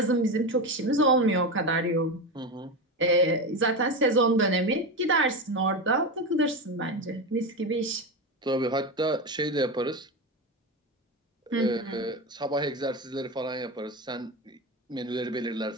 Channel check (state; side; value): normal; both; correlation 0.18